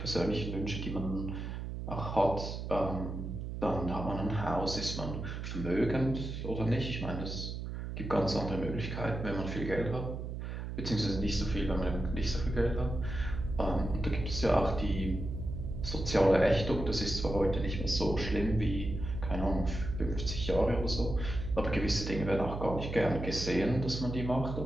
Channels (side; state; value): right; noise; hum, 6 dB below the sound